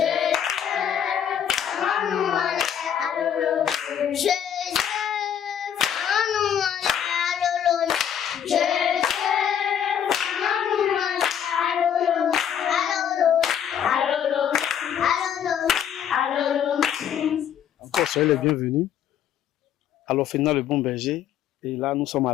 Manuane, Alolo. Joseph, Manuane, Alolo. Joseph, Manuane, Alolo. Alolo, Alolo, Alolo, Alolo. Encore soyez les bienvenus à l'orphelinat Le Bon Berger. Et là, nous sommes à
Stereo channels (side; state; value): right; quieter; 9.1 dB